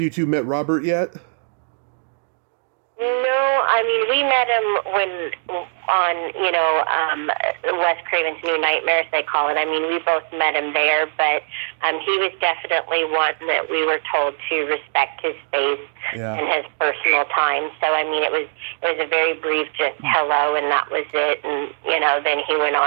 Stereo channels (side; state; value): left; silent; 65 dB below the other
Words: you two met Robert yet? No, I mean, we met him when on, Wes Craven's New Nightmares, they call it. I mean, we both met him there, but he was definitely one that we were told to respect his space and his personal time. So, I mean, it was a very brief just hello, and that was it. And, then he went